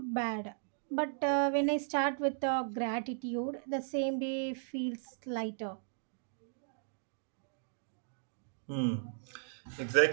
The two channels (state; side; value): silent; left; digital silence